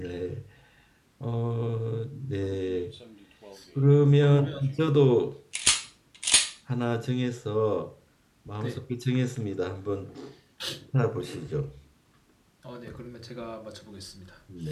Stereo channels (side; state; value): both; identical; correlation 1.00